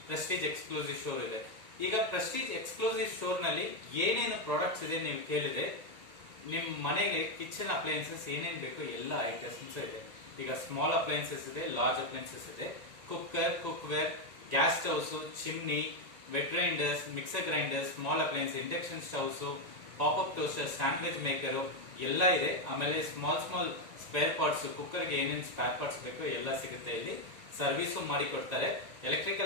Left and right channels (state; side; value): late; left; 1.9 ms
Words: ಪ್ರೆಸ್ಟೀಜ್ ಎಕ್ಸ್ಕ್ಲೂಸಿವ್ ಶೋರ್ ಇದೆ. ಈಗ ಪ್ರೆಸ್ಟೀಜ್ ಎಕ್ಸ್ಕ್ಲೂಸಿವ್ ಶೋರ್ ನಲ್ಲಿ ಏನೇನು ಪ್ರಾಡಕ್ಟ್ಸ್ ಇದೆ ನೀವು ಕೇಳಿದೆ. ನಿಮ್ ಮನೆಗೆ ಕಿಚನ್ ಅಪ್ಲೈನ್ಸಸ್ ಏನೇನ್ ಬೇಕು ಎಲ್ಲ ಐಟಮ್ಸ್ ಇದೆ. ಈಗ ಸ್ಮಾಲ್ ಅಪ್ಲೈನ್ಸಸ್ ಇದೆ, ಲಾರ್ಜ್ ಅಪ್ಲೈನ್ಸಸ್ ಇದೆ, cooker, cookware, gas stoves, chimney, wet grinders, mixer grinders, small appliance, induction stoves, pop up toaster, sandwich maker ಎಲ್ಲ ಇದೆ. ಆಮೇಲೆ ಸ್ಮಾಲ್ ಸ್ಪೇರ್ ಪಾರ್ಟ್ಸ್, ಕುಕ್ಕರ್ಗೆ ಏನೇನು ಸ್ಪೇರ್ ಪಾರ್ಟ್ಸ್ ಬೇಕು ಎಲ್ಲ ಸಿಗುತ್ತೆ ಇಲ್ಲಿ. ಸರ್ವಿಸು ಮಾಡಿ ಕೊಡ್ತಾರೆ.